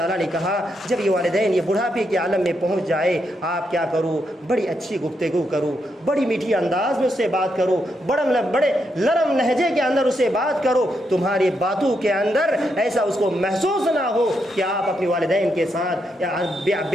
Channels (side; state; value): both; normal; correlation 0.81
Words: نے کہا جب یہ والدین یہ بڑھاپے کے عالم میں پہنچ جائے، آپ کیا کرو، بڑی اچھی گفتگو کرو، بڑی میٹھی انداز میں اس سے بات کرو، بڑے نرم لہجے کے اندر اس سے بات کرو، تمہاری باتوں کے اندر ایسا اس کو محسوس نہ ہو کہ آپ اپنے والدین کے ساتھ